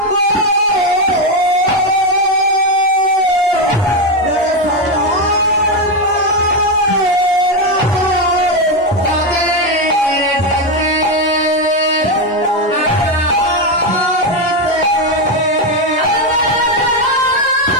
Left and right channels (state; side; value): normal; both; correlation 0.08